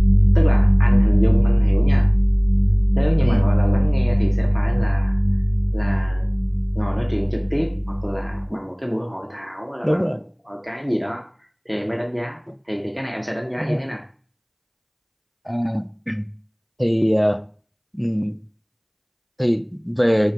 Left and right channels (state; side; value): identical; both; correlation 1.00